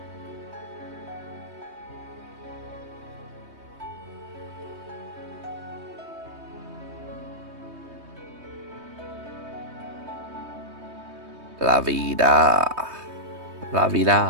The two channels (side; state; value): left; late; 3.2 ms